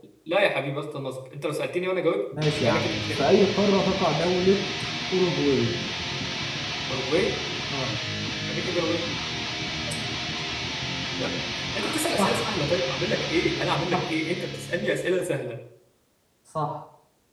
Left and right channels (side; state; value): both; identical; correlation 1.00